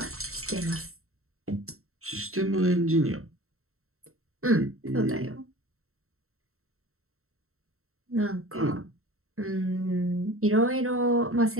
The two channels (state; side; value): late; left; 0.63 ms